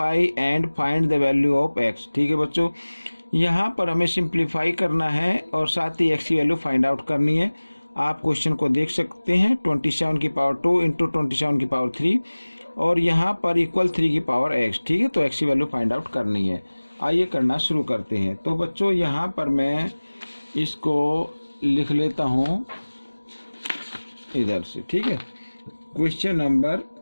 and find the value of x. ठीक है बच्चों, यहाँ पर हमें सिंप्लीफाई करना है और साथ ही एक्स की वैल्यू फाइंड आउट करनी है। आप क्वेश्चन को देख सकते हैं 27 की पावर 2 इंटू 27 की पावर 3 और यहाँ पर इक्वल 3 की पावर एक्स। ठीक है, तो एक्स की वैल्यू फाइंड आउट करनी है। आइए करना शुरू करते हैं। तो बच्चों यहाँ पर मैं इसको लिख लेता हूँ इधर से। ठीक है, क्वेश्चन नंबर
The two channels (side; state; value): both; inverted; correlation -1.00